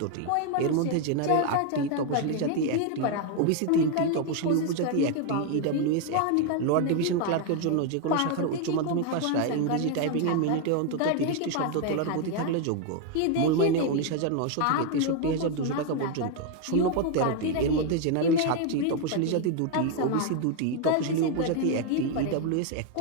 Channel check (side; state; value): both; different; correlation 0.01